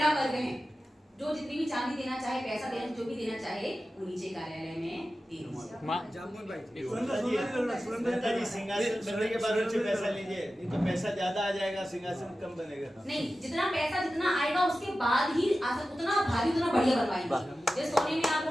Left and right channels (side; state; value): both; normal; correlation 0.94